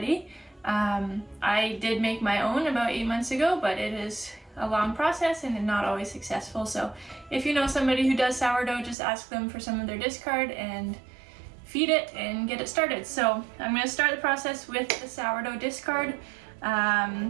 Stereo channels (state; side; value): drops out; left; at 9.0 s